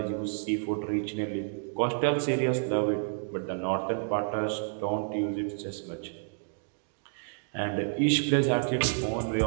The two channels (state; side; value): silent; left; digital silence